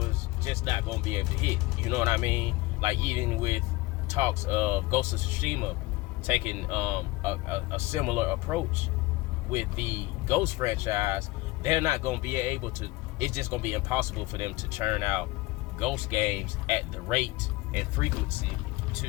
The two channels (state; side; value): quieter; right; 20.4 dB